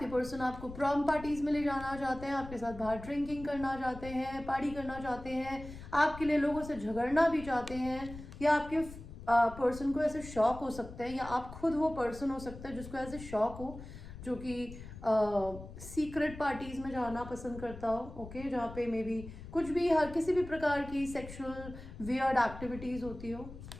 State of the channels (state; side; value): noise; left; rumble, 13 dB below the sound